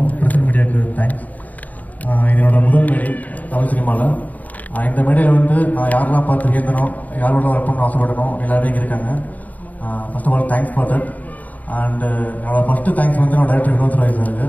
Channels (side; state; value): right; late; 0.076 ms